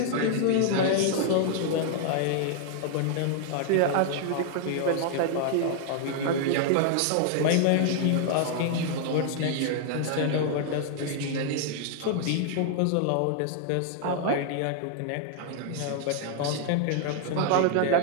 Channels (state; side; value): different; both; correlation 0.00